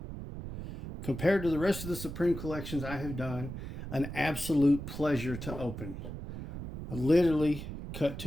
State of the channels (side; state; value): right; noise; rumble, 8 dB below the sound